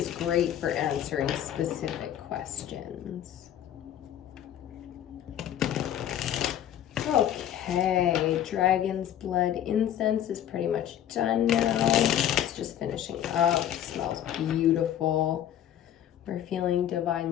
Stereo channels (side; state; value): right; quieter; 10.8 dB